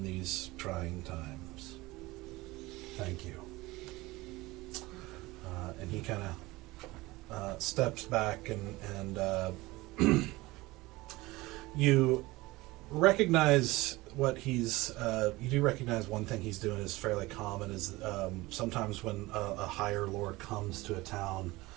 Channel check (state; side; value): quieter; left; 20.5 dB